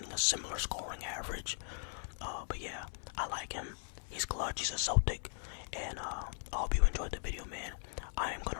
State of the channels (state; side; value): silent; right; 52 dB below the other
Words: a similar scoring average. But yeah, I like him. He's clutch. He's a Celtic. And I hope you enjoyed the video, man. I am